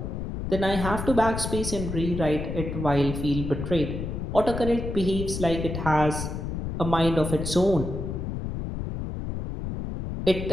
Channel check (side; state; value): left; noise; rumble, 5 dB below the sound